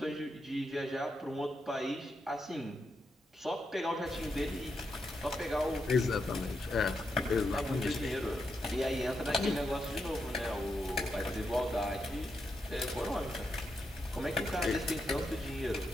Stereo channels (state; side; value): normal; both; correlation 0.83